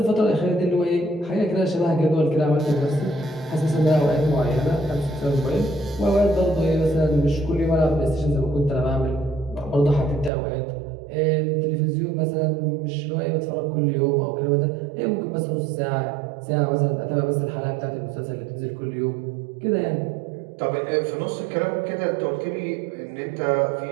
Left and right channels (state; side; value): drops out; left; at 10.3 s